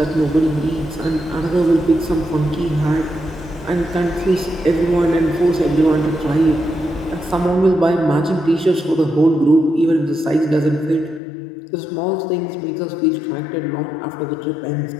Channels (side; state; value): right; drops out; at 11.2 s